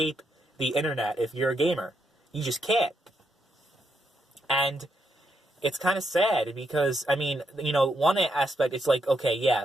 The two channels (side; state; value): both; normal; correlation 0.79